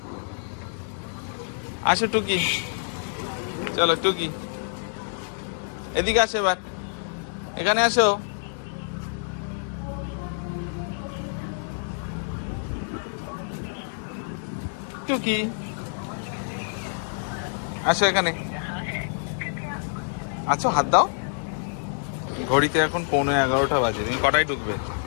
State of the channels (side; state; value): right; silent; digital silence